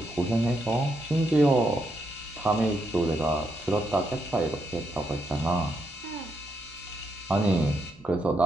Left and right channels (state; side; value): noise; right; hum, 24 dB below the sound